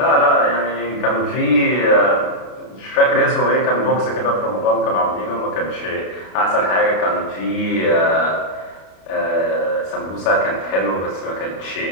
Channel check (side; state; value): right; late; 32 ms